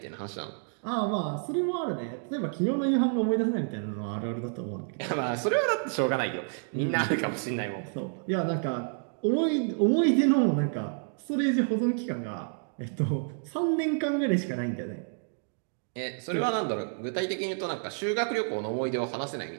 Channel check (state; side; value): silent; left; 55 dB below the other